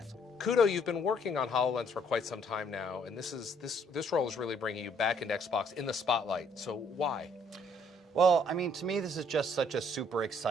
Kudo, you've been working on HoloLens for quite some time now, and this role is really bringing you back into Xbox in the spotlight. So why? Well, to me, this is just such a super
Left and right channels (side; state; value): both; normal; correlation 0.65